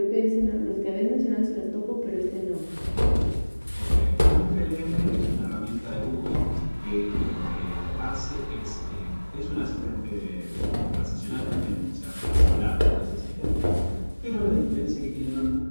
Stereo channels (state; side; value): inverted; both; correlation -1.00